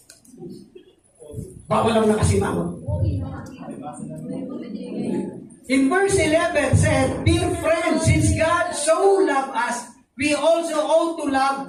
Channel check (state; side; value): identical; both; correlation 1.00